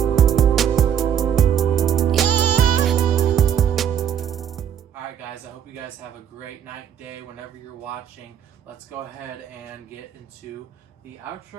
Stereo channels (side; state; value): left; quieter; 9.0 dB